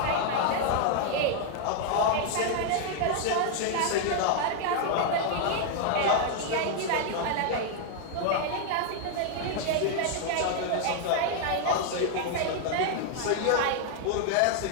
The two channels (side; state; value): both; different; correlation 0.00